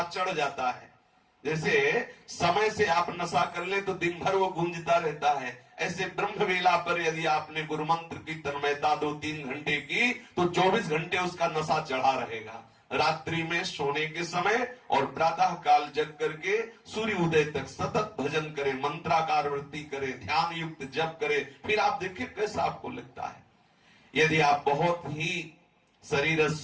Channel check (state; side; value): identical; both; correlation 1.00